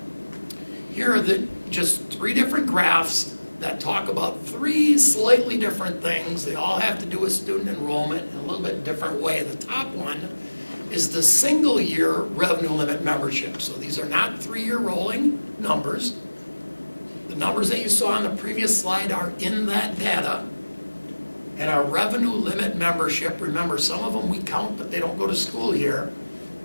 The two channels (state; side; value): inverted; both; correlation -1.00